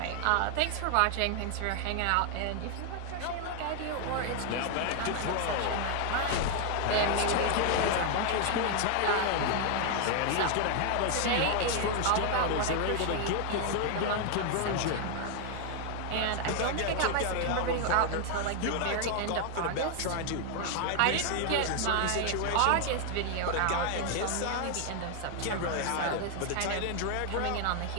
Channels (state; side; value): different; both; correlation 0.00